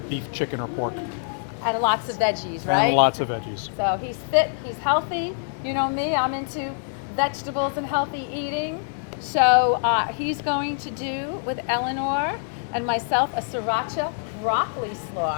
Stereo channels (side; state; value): right; silent; 62 dB below the other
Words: beef, chicken, or pork. And lots of veggies, right? And lots of veggies. So he's fit, he's healthy. You know me, I'm into vegetables and healthy eating. So he's going to do with Eleanor and myself a Sriracha broccoli